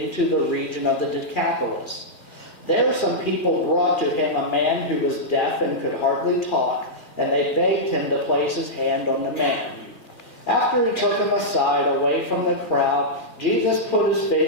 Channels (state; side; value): late; right; 2.3 ms